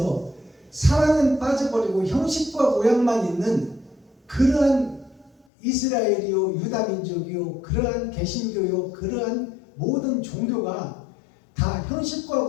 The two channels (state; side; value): drops out; right; at 5.5 s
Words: 사랑은 빠져버리고 형식과 모양만 있는 그러한 이스라엘이요, 유다민족이요, 그러한 개신교요, 그러한 모든 종교가 다 형식과